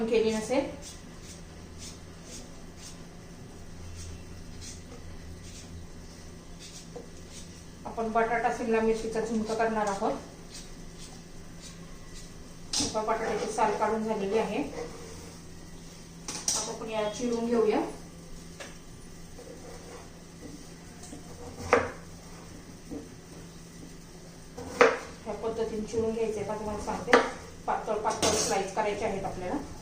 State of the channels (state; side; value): identical; both; correlation 1.00